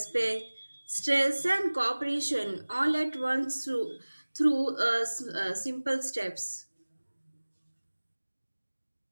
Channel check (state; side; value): inverted; both; correlation -1.00